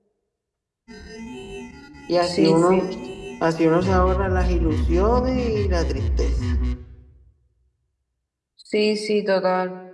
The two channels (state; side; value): identical; both; correlation 1.00